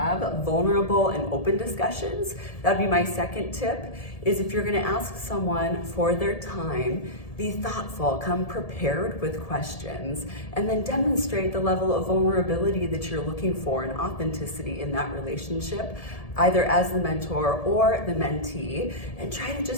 vulnerable and open discussions. That'd be my second tip, is if you're gonna ask someone for their time, be thoughtful, come prepared with questions, and then demonstrate the level of vulnerability that you're looking for and authenticity in that relationship, either as the mentor or the mentee, and try to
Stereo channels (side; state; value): right; late; 1.7 ms